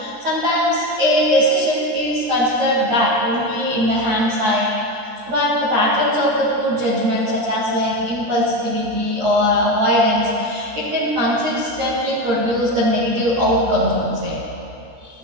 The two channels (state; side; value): late; left; 13 ms